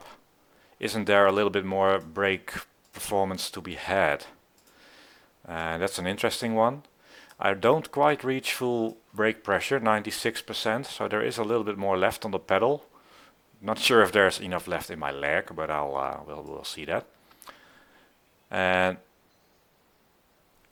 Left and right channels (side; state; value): both; identical; correlation 1.00